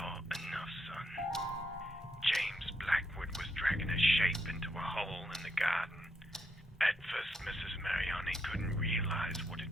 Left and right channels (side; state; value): both; normal; correlation 0.78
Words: enough, son. James Blackwood was dragging a shape into a hole in the garden. At first, Mrs. Mariani couldn't realize what